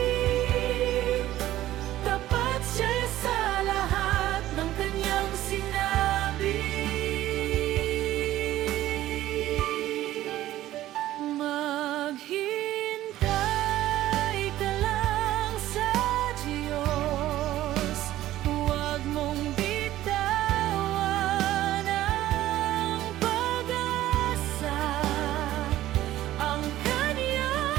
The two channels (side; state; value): left; quieter; 14.4 dB